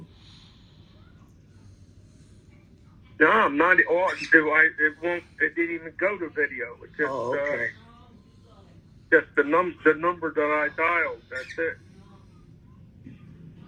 No, I'm not. It won't. It didn't even go to video. It's just okay. Just the number that I dialed. That's it.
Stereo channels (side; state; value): both; identical; correlation 1.00